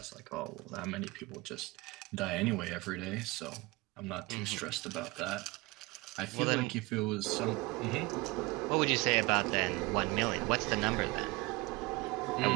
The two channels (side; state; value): left; quieter; 23.6 dB